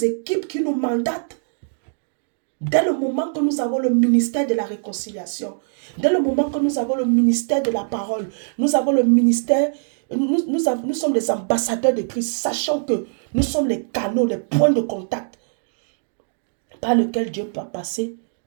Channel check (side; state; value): left; silent; digital silence